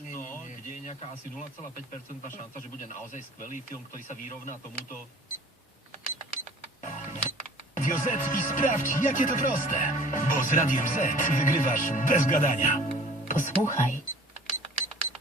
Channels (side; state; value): both; normal; correlation 0.47